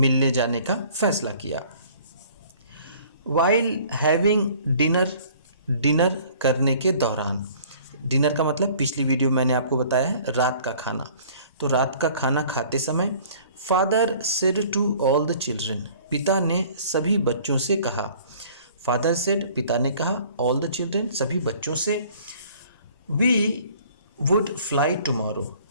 जाने का फैसला किया। वाइल हैविंग डिनर, डिनर करने के दौरान। डिनर का मतलब पिछली वीडियो मैंने आपको बताया है रात का खाना। तो रात का खाना खाते समय father said to all the children, पिता ने सभी बच्चों से कहा। फादर सेड, पिता ने कहा, ऑल द चिल्ड्रन, सभी बच्चों से, वी वुड फ्लाई टुमारो,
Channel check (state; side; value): inverted; both; correlation -0.52